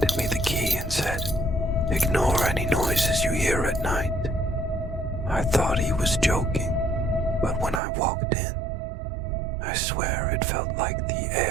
me the key and said, "Ignore any noises you hear at night." I thought he was joking, but when I walked in, I swear it felt like the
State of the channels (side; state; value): left; drops out; at 7.8 s